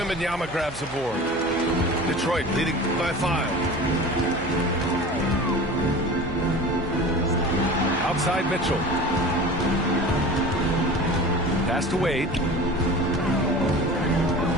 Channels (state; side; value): noise; right; hum, 17 dB below the sound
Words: grabs the board. Detroit leading by 5. Outside Mitchell. Pass to Wade.